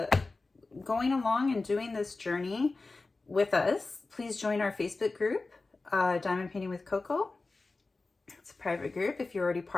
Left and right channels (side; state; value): right; quieter; 3.6 dB